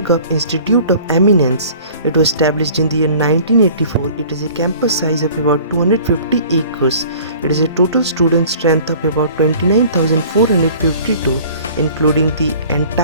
of Institute of Eminence. It was established in the year 1984. It has a campus size of about 250 acres. It has a total student strength of about 29,452, including the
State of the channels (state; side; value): inverted; both; correlation -0.48